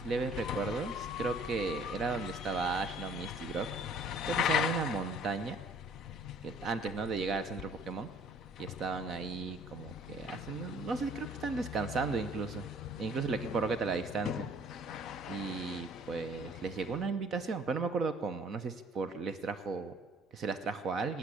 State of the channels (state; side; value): normal; both; correlation 0.55